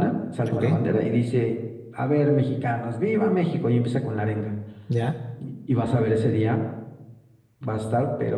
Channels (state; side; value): identical; both; correlation 1.00